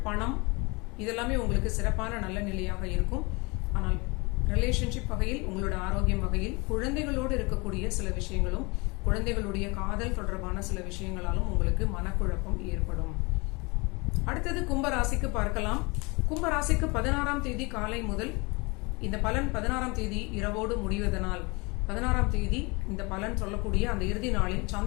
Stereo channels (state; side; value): quieter; right; 27.2 dB